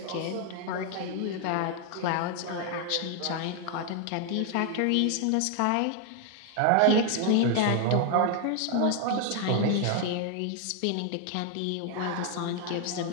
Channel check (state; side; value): different; both; correlation 0.00